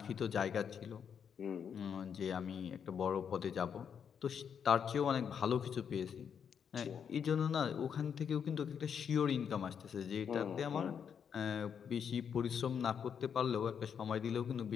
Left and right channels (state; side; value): quieter; right; 7.5 dB